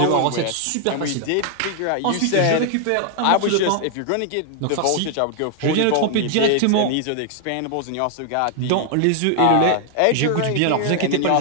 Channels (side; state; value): both; different; correlation 0.00